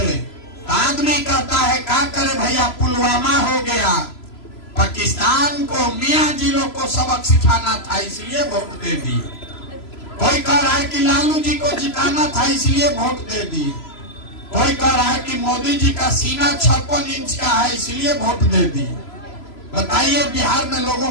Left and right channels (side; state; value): right; late; 3.0 ms